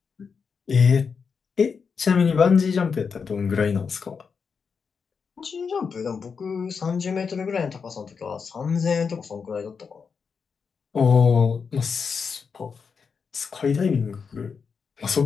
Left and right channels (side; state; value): right; quieter; 5.8 dB